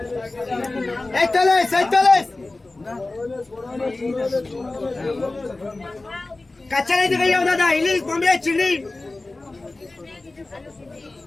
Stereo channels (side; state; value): right; quieter; 3.1 dB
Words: 41 কাঁচা नहीं दिखाई दादा, इंग्लिश बॉम्बे चिल्ली।